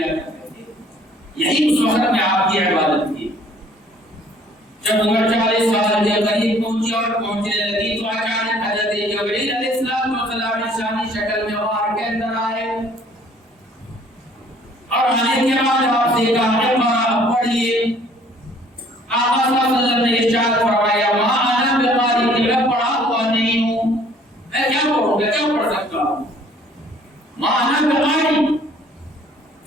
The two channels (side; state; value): both; normal; correlation 0.57